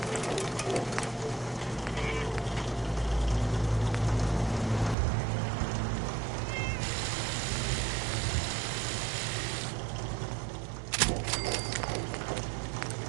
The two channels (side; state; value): left; drops out; at 5.0 s